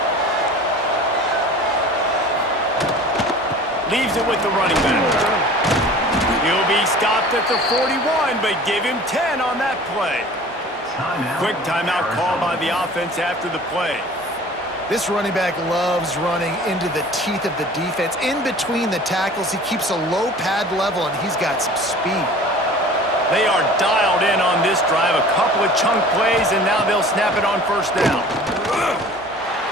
Leaves it with the running back. He'll be stopped at the 41, but give him 10 on that play. Quick timeout call by the offense after the play. This running back loves running into the teeth of the defense. In between the tackles, he keeps a low pad level, and he's got some speed. They are dialed in on this drive. A couple of chunk plays, and now they'll snap it on 1st down.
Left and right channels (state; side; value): normal; both; correlation 0.44